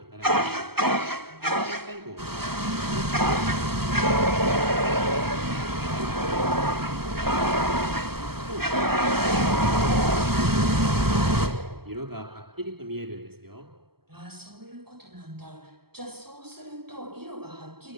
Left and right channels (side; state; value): left; late; 0.96 ms